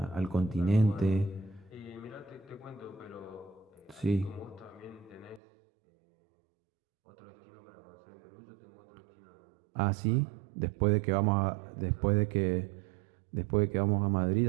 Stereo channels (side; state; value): left; drops out; at 5.4 s